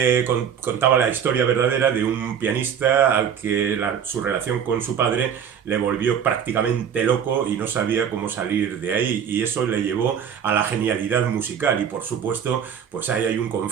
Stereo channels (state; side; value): quieter; left; 8.0 dB